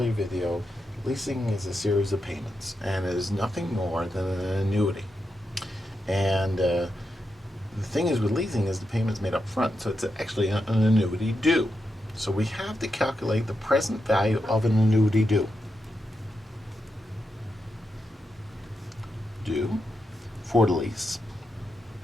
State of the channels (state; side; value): normal; both; correlation 0.86